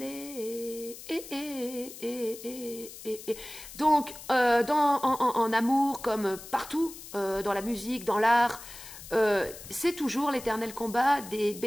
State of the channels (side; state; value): left; noise; hiss, 14 dB below the sound